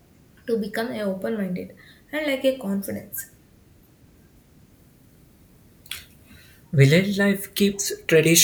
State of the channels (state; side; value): identical; both; correlation 1.00